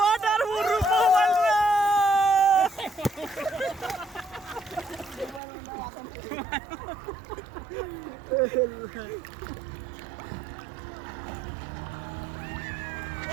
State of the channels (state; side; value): drops out; left; at 5.4 s